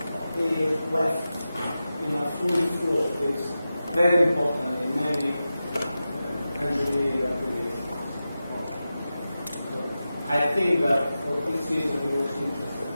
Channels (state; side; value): inverted; both; correlation -0.93